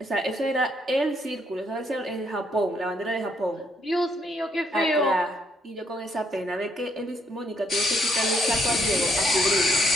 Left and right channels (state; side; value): normal; both; correlation 0.72